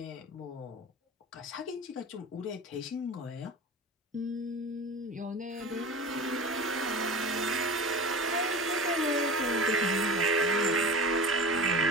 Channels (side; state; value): both; normal; correlation 0.34